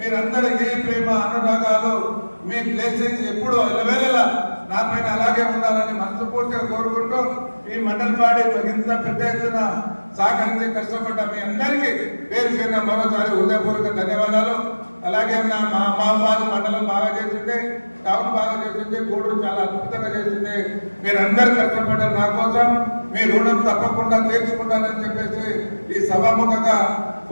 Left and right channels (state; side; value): inverted; both; correlation -1.00